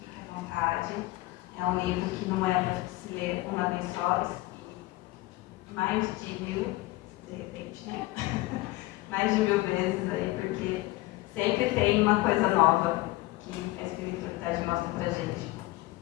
à vontade. É um livro que não é para se ler uma vez só, e mais de 1000, de repente, né? Mais de 1000 vezes aí, porque sempre tem uma coisa nova que a espiritualidade mostra pra gente.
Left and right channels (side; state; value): right; quieter; 19.4 dB